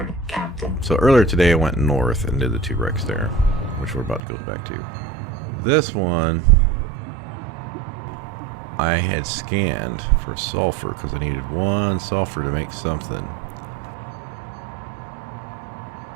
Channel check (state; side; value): drops out; left; at 4.2 s